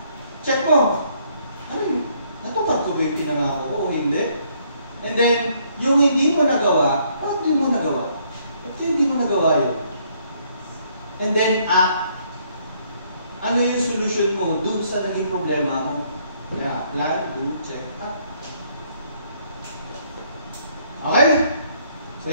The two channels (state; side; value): inverted; both; correlation -0.68